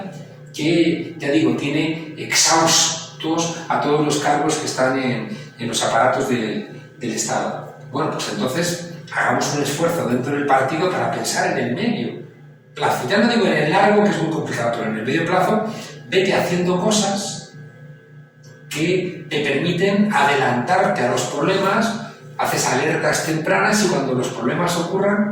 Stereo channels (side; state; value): both; identical; correlation 1.00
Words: que, ya digo, tiene exhaustos a todos los cargos que están en los aparatos del Estado. Bueno, pues entonces hagamos un esfuerzo dentro del partido para pensar en el medio plazo. Ya no digo en el largo, que es muy complicado, pero en el medio plazo, vete haciendo cosas que te permiten adelantarte a los problemas, haces alertas tempranas y cuando los problemas